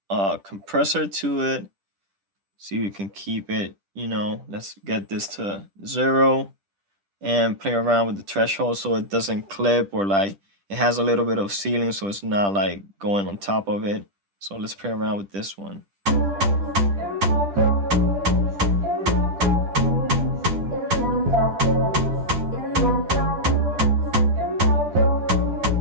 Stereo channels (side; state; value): left; late; 10 ms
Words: a compressor to it. See if we can keep it, you know, let's get this to 0 and play around with the threshold so it doesn't clip, or like it has a little bit of ceiling so it's not like going on top of it. So let's play around with this one.